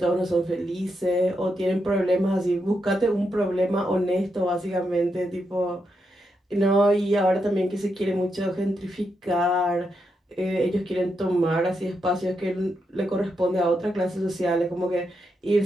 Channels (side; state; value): both; normal; correlation 0.83